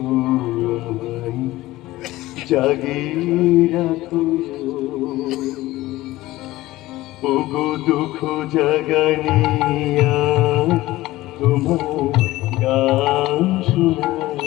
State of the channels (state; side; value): quieter; right; 17.5 dB